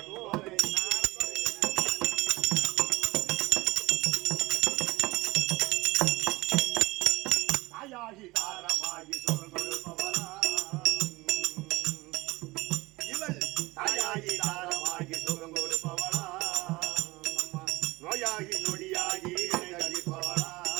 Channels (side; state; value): left; quieter; 21.3 dB